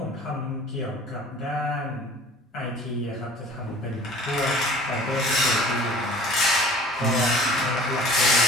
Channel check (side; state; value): both; normal; correlation 0.46